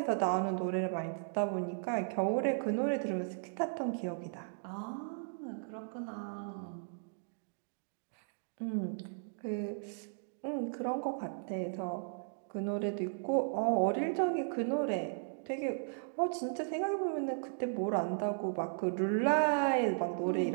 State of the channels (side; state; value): left; silent; digital silence